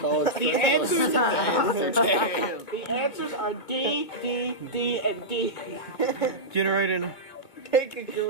The answers Damn. The answers are D, D, D, and D. Generating. Take a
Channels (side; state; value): right; late; 2.7 ms